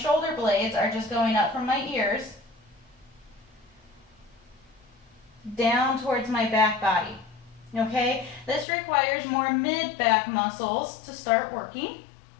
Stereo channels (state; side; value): drops out; right; at 8.7 s